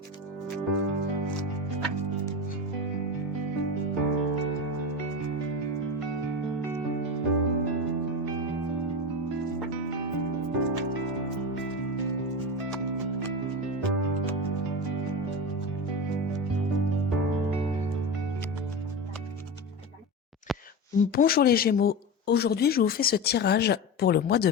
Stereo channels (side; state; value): both; normal; correlation 0.22